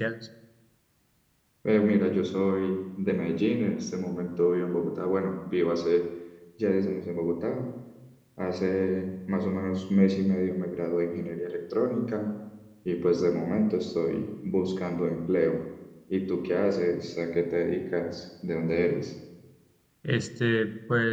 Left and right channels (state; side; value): identical; both; correlation 1.00